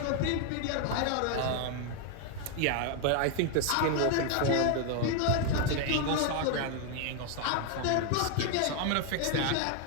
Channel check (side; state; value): both; different; correlation 0.01